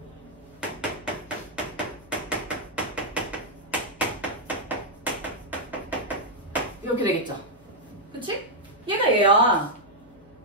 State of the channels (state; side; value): noise; left; hum, 27 dB below the sound